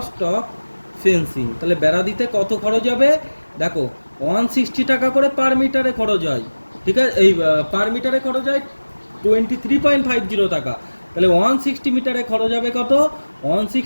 ফেন্সিং তাহলে বেড়া দিতে কত খরচ হবে? দেখো 160 টাকা করে পার মিটারে খরচ হয়। ঠিক আছে, এই পার মিটারে খরচ হয় 23.50 টাকা। তাহলে 160 মিটারে খরচ হবে কত?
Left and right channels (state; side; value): inverted; both; correlation -1.00